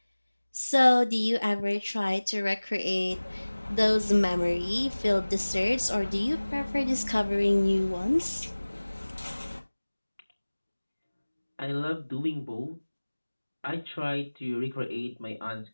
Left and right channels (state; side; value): inverted; both; correlation -1.00